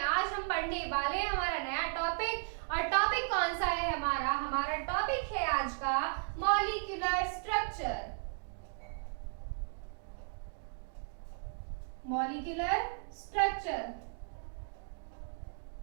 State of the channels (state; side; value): silent; left; digital silence